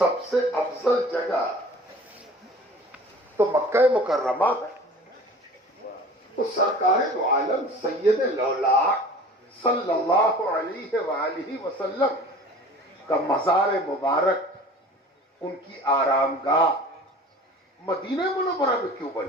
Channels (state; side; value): normal; both; correlation 0.43